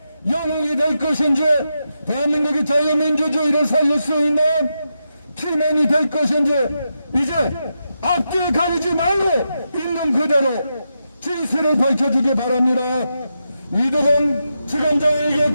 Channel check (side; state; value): both; inverted; correlation -0.86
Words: 영웅이 될 것인지, 대한민국의 자유민주주의를 살릴 수 있는 키맨이 될 것인지, 이제 앞뒤 가리지 말고 있는 그대로 진실을 밝혀주기 바랍니다. 이두봉 지검장에게